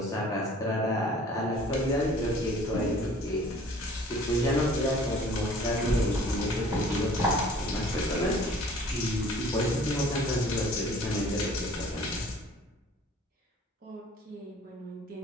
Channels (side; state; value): both; normal; correlation 0.51